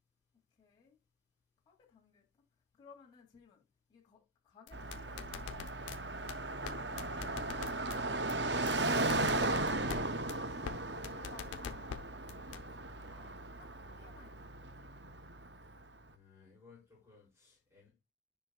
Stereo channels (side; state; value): both; normal; correlation -0.10